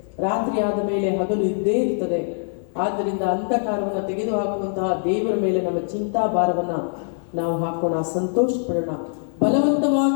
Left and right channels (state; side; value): silent; right; digital silence